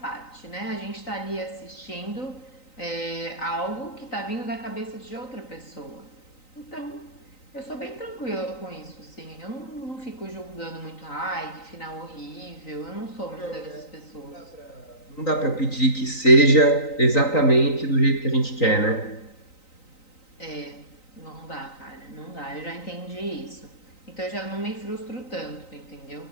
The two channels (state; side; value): late; right; 3.9 ms